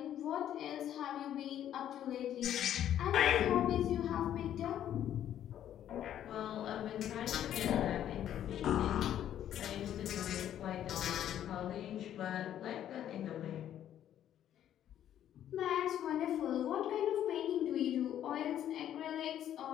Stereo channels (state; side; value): quieter; right; 10.9 dB